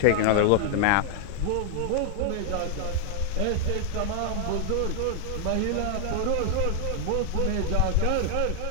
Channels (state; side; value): different; both; correlation 0.00